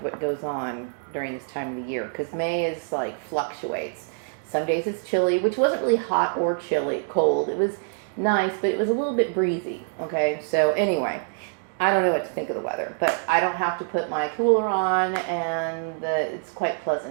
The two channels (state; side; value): silent; left; digital silence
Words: what goes on during this time of the year because May is like fluctuates. Some days it's chilly, which wasn't really hot or chilly, cold. It was nice, but it was a little bit breezy. Okay, so anyway, I don't know what to think of the weather, but I don't have to put my cooler on, and it's quite